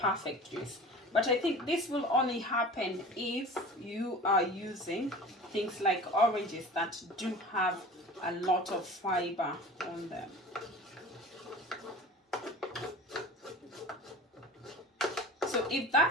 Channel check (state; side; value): normal; both; correlation 0.39